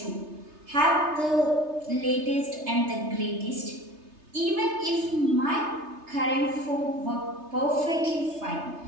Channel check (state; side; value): late; left; 3.3 ms